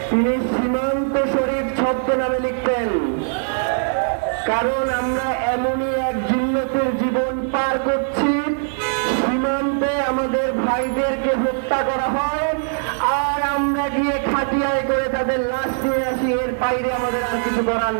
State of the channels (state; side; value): silent; left; digital silence